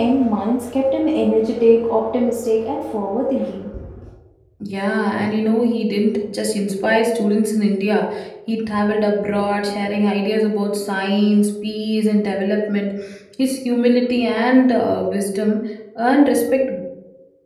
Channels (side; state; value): both; identical; correlation 1.00